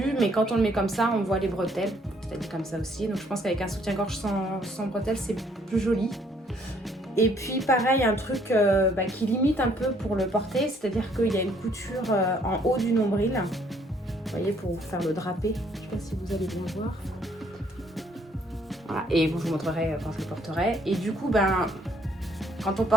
mais quand on le met comme ça, on voit les bretelles, c'est-à-dire comme ça aussi, donc je pense qu'avec un soutien-gorge sans bretelles, c'est plus joli. Et puis pareil, un truc qui limite un peu pour le porter, c'est-à-dire qu'il y a une couture en haut du nombril, vous voyez, pour faire le drapé, je ne sais pas si vous allez bien voir. Voilà. Et bon, je vous montrerai quand je le porterai, et du coup, quand on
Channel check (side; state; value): both; normal; correlation 0.65